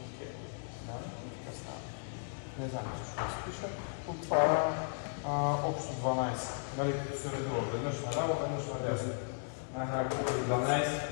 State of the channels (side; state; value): right; silent; digital silence